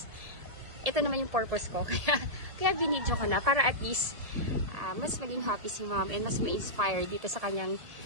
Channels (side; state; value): left; late; 1.7 ms